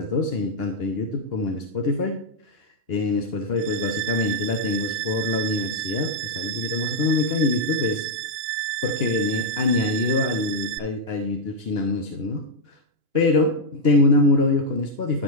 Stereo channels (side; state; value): left; late; 2.9 ms